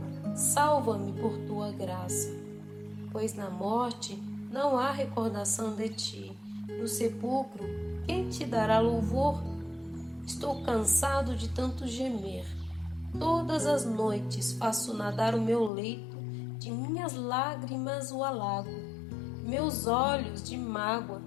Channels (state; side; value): drops out; right; at 15.7 s